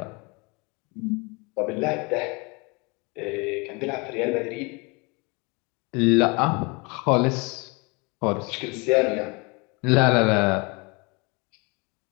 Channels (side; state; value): right; quieter; 28.8 dB